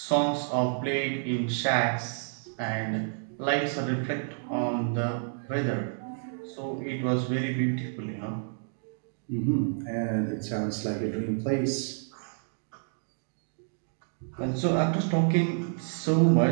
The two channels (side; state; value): left; silent; digital silence